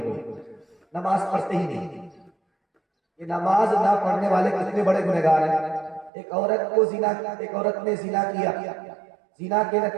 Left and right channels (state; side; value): drops out; left; at 6.1 s